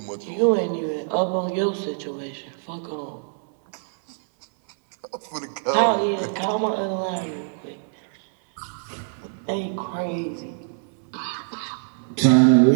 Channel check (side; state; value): left; silent; 62 dB below the other